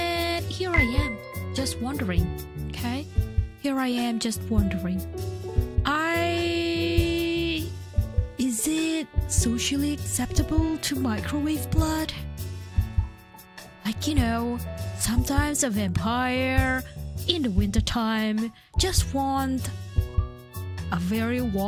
here I am, just wondering, okay? Is it socially acceptable to microwave blood? Sometimes a vampire in the wintertime just want a very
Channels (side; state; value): both; identical; correlation 1.00